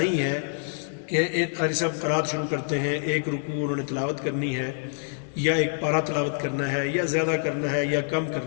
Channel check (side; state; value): right; silent; 55 dB below the other